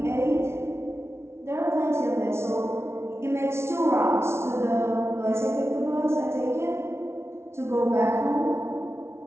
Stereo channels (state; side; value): late; left; 0.13 ms